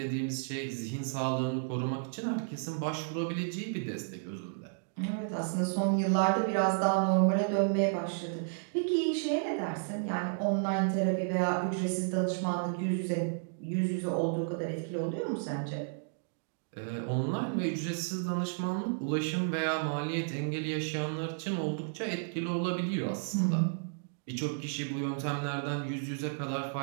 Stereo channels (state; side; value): silent; left; digital silence